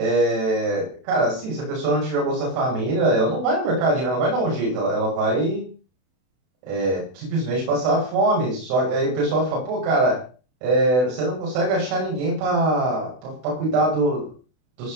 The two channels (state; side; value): late; left; 32 ms